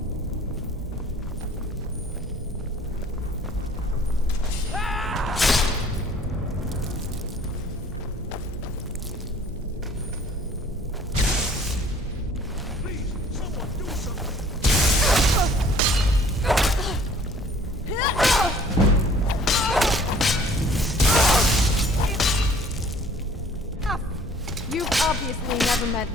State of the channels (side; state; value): both; normal; correlation 0.54